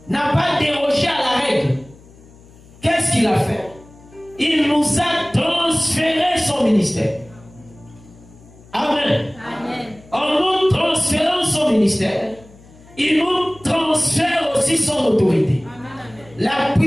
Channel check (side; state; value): left; noise; hum, 24 dB below the sound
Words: n'a pas dérogé à la règle. Qu'est-ce qu'il a fait? Il nous a transféré son ministère. Amen. Amen. En nous transférant son ministère, il nous transfère aussi son autorité. Amen. La